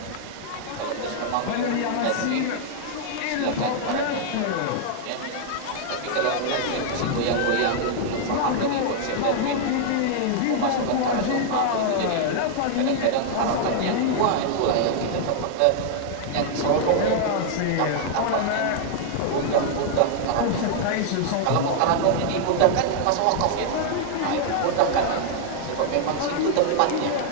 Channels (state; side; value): different; both; correlation -0.01